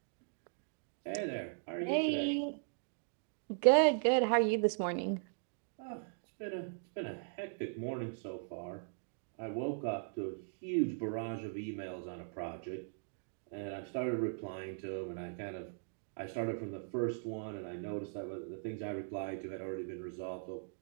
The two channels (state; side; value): silent; left; digital silence